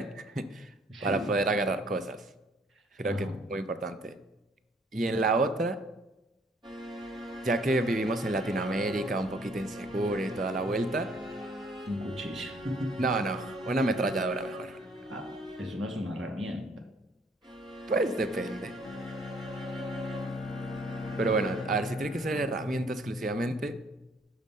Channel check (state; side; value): normal; both; correlation 0.62